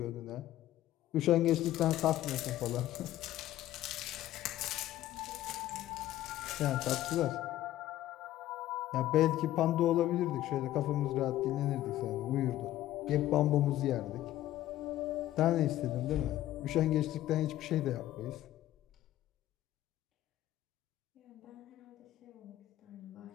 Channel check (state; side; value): quieter; right; 13.9 dB